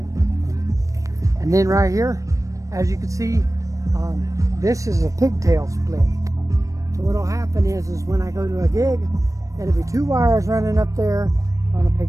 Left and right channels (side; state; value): left; late; 0.16 ms